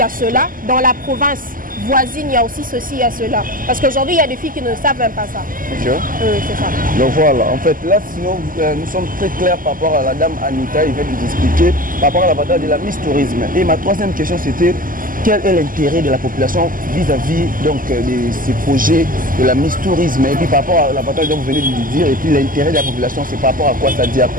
a cela. Dans la province voisine, il y a aussi ceci, il y a cela. Parce qu'aujourd'hui, il y a des filles qui ne savent même pas ça. C'est ça. Donc voilà, en fait, là, sinon, nous sommes très clairs par rapport à la dame Anita, il vient de nous expliquer par rapport à l'avantage de la Miss Tourisme. Et ma troisième question, c'était quel est l'intérêt de la population vis-à-vis donc de ces projets de la Miss Tourisme? Et puis par rapport à l'avantage dont vous venez de nous dire, et puis l'intérêt de la population, c'est par rapport à quoi? Ça dit à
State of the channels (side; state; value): left; late; 0.41 ms